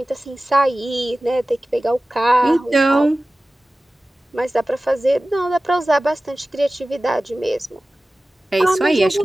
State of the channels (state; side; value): normal; both; correlation 0.96